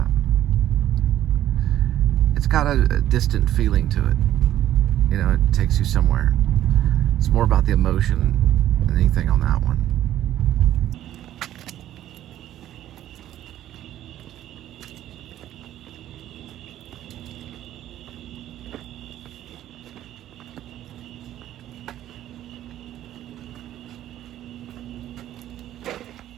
It's got a distant feeling to it. You know, it takes you somewhere. It's more about the emotion than anything on that one.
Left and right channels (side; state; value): left; quieter; 12.5 dB